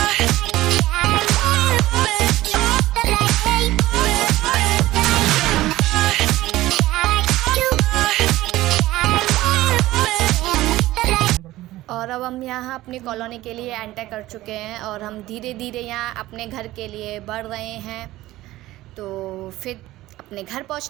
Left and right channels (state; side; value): quieter; left; 16.6 dB